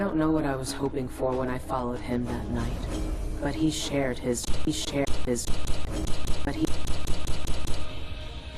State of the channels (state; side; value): identical; both; correlation 1.00